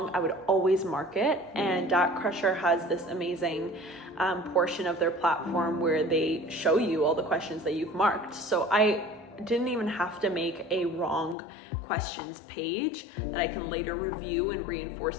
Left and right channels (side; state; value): right; drops out; at 11.4 s